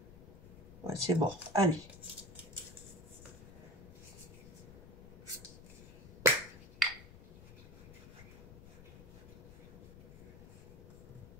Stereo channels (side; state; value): left; noise; rumble, 16 dB below the sound